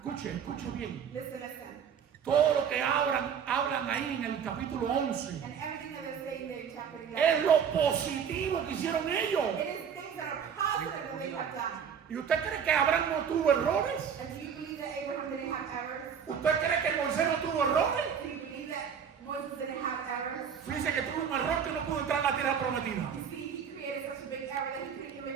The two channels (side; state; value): left; quieter; 7.5 dB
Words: escuche bien, Listen, listen. todo lo que hablan ahí en el capítulo 11, And everything that they're saying there in chapter 11. es lo positivo que hicieron ellos. It is things that are positive that they have done. ¿Y usted cree que Abraham no tuvo errores? And do you believe that Abraham didn't have errors? ¿Usted cree que Moisés no tuvo errores? Do you believe that Moses didn't have errors? Fíjese que tuvo un error que no pudo entrar a la tierra prometida. You see, he created such a big error that he couldn't even